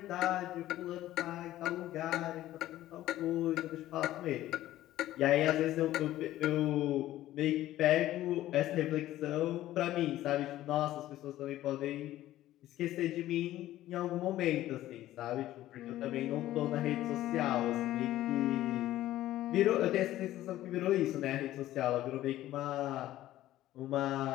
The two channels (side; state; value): right; quieter; 14.4 dB